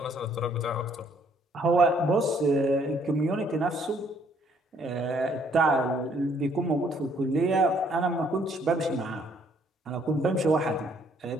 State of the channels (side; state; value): both; normal; correlation 0.65